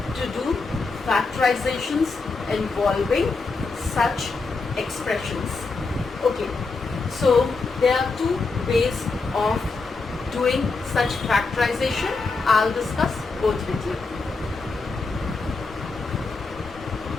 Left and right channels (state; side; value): quieter; right; 4.0 dB